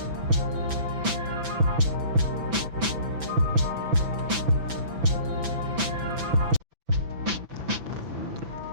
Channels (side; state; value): left; late; 6.0 ms